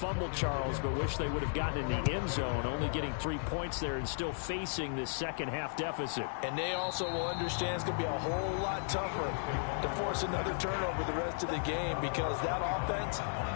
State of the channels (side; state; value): right; silent; digital silence